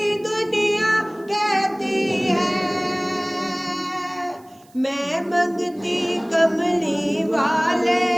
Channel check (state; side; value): noise; right; hiss, 29 dB below the sound